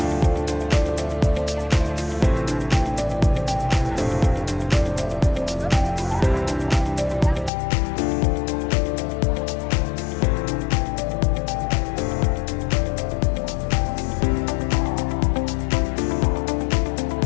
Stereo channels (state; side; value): drops out; right; at 7.5 s